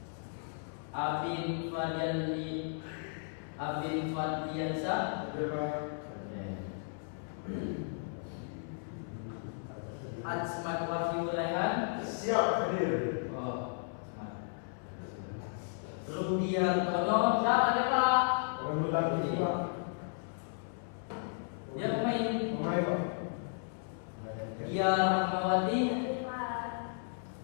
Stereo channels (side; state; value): right; silent; 55 dB below the other